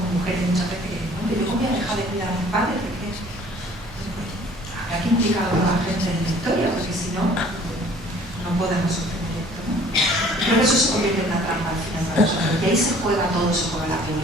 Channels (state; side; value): noise; right; hum, 20 dB below the sound